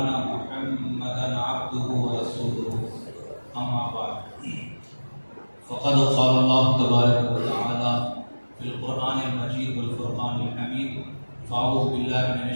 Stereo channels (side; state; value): both; inverted; correlation -1.00